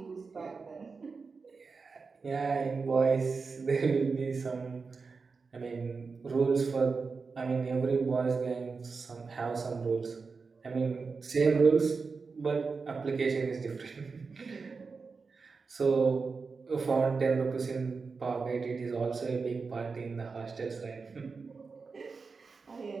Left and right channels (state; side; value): quieter; left; 4.7 dB